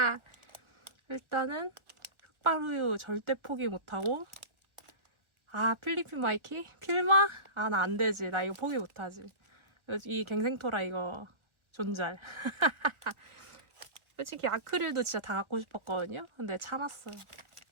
일단은 흑발우유 절대 포기 못하고 필리핀 마이키? 필마? 나 안 되지. 나 이거 포기 못하지. 이 갱생토라 이거 존잘. 솔직히 아크릴도 진짜 다 갖고 싶었거든요. 근데 참았어요.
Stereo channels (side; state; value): left; late; 1.3 ms